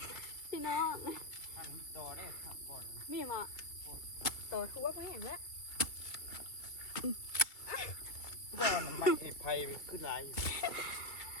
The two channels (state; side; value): late; right; 2.3 ms